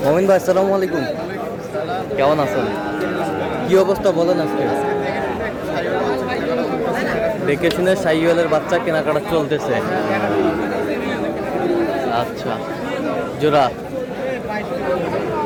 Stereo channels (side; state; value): both; identical; correlation 1.00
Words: মমিন ভাই আসসালামু আলাইকুম, কেমন আছেন? কি অবস্থা বলেন আজকে? দেখে শুনে শাহিওয়ালের বাচ্চা কেনাকাটা চলতেছে। আচ্ছা, জোড়া